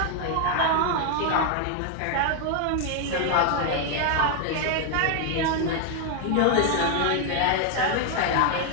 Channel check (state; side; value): different; both; correlation 0.00